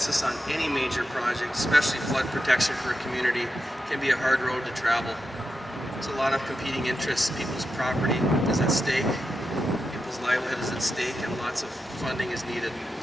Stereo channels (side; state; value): both; normal; correlation 0.89